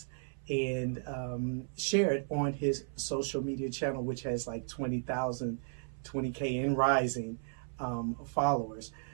and share it on his social media channel, which has like 20,000, 20K and rising followers.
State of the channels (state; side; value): silent; left; 55 dB below the other